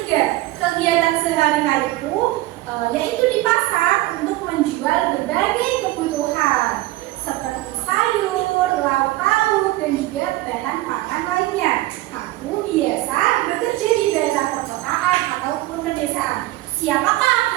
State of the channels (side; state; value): left; quieter; 18.0 dB